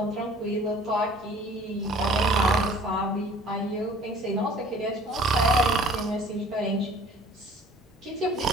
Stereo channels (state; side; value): normal; both; correlation 0.51